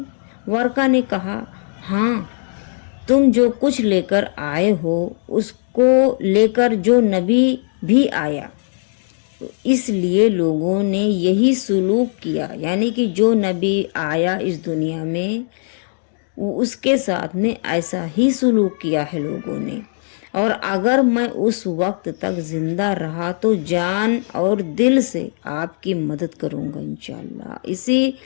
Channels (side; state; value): right; silent; digital silence